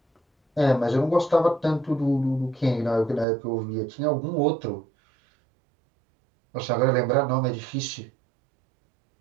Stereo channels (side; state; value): left; drops out; at 3.2 s